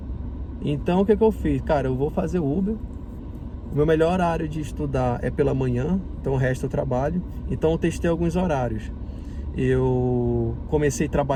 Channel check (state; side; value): identical; both; correlation 1.00